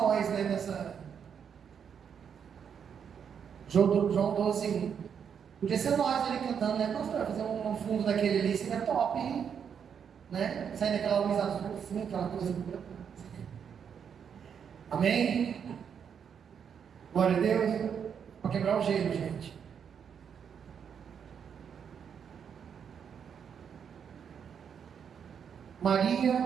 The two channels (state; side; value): quieter; left; 7.5 dB